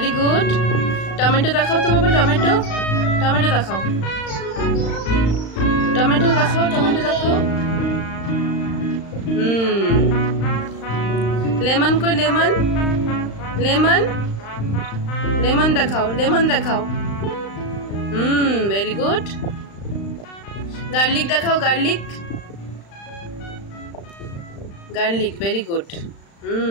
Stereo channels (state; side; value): late; right; 35 ms